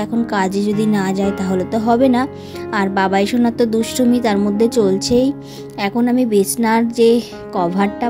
এখন কাজে যদি না যায় তাহলে তো হবে না। আর বাবাই সোনার তো দুষ্টুমি তার মধ্যে চলছেই। এখন আমি বিছনার যে কভারটা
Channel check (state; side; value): identical; both; correlation 1.00